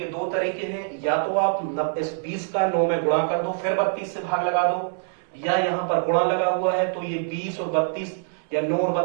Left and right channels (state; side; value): silent; left; digital silence